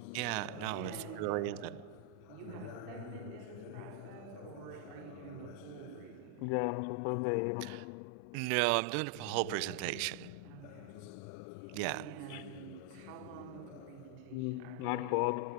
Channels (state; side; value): different; both; correlation 0.00